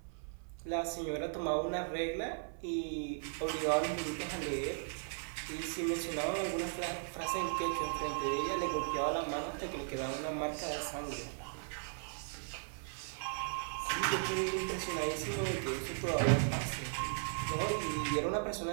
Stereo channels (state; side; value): silent; left; 53 dB below the other